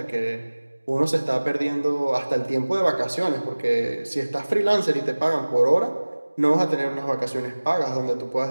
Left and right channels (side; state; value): both; inverted; correlation -1.00